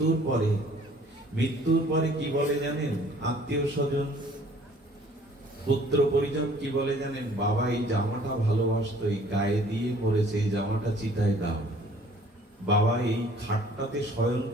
পরে কি বলে জানেন? আত্মীয় স্বজন, পুত্র পরিজন কি বলে জানেন? বাবা এই জামাটা ভালোবাসতো, এই গায়ে দিয়ে মরেছে, এই জামাটা চিতায় দাও। বাবা এই খাটটাতে শয়ন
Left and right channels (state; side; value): normal; both; correlation 0.55